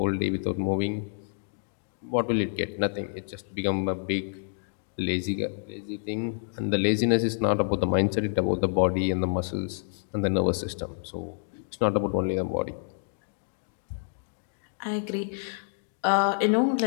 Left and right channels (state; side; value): silent; right; digital silence